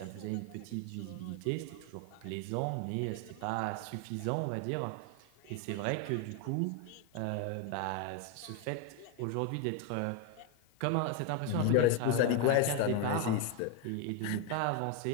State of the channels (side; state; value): both; different; correlation 0.01